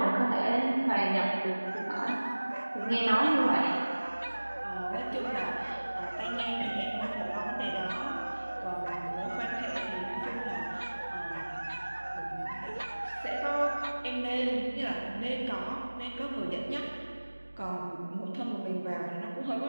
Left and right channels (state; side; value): inverted; both; correlation -1.00